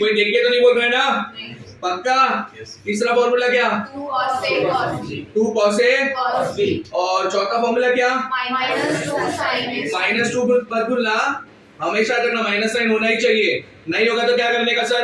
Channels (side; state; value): both; identical; correlation 1.00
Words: देख के तो नहीं बोल रहे ना? पक्का? तीसरा फॉर्मूला क्या? 2 cos a cos b। 2 cos a cos b। और चौथा फॉर्मूला क्या? -2 sin a। -2 मत भूलना, हमेशा रखना, माइनस साइन होना ही चाहिए। नहीं होगा तो क्या करने का